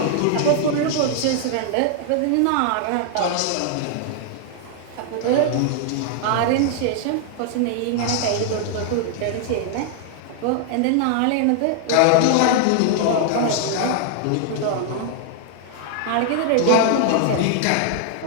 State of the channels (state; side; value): different; both; correlation 0.00